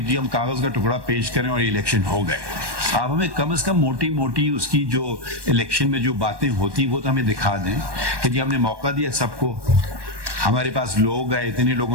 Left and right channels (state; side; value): late; left; 1.2 ms